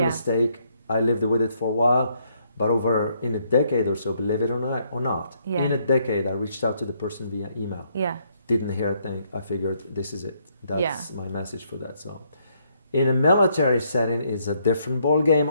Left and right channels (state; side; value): inverted; both; correlation -0.72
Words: mistake. I lived with it for a while. But over in a decade or so, believe it or not, in a decade, I reached out to the person via email. Yeah. Didn't hear a thing. I figured this is it. That's my message for that. So in a military setting, it's a different ball game